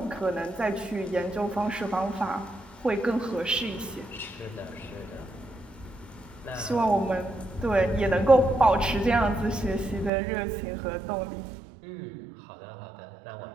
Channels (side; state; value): left; drops out; at 10.1 s